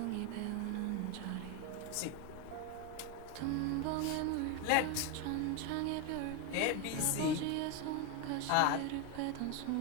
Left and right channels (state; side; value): different; both; correlation 0.02